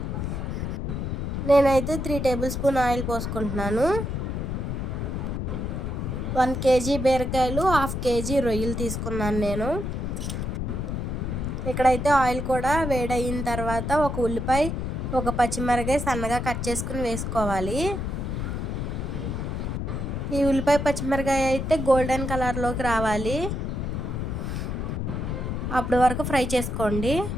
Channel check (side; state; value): left; noise; rumble, 3 dB below the sound